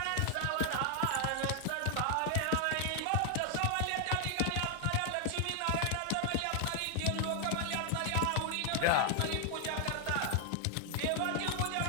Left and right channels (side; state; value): both; different; correlation 0.00